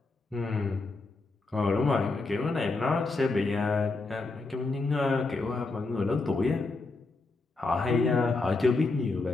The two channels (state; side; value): quieter; right; 3.5 dB